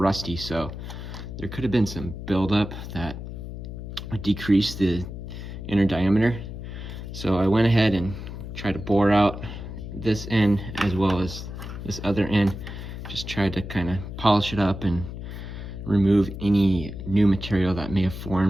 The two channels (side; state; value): left; noise; hum, 9 dB below the sound